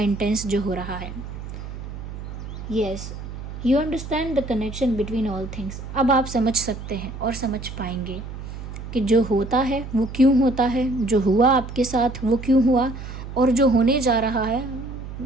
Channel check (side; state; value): right; noise; hum, 10 dB below the sound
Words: जो हो रहा है। Yes, you understand the connection between all things. अब आप समझ सकते हैं और समझ पाएंगे कि जो होता है वो क्यों होता है, जो हुआ आपके साथ वो क्यों हुआ, और जो होने जा रहा है